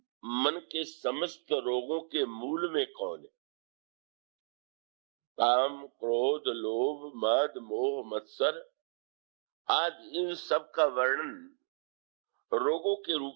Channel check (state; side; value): silent; left; digital silence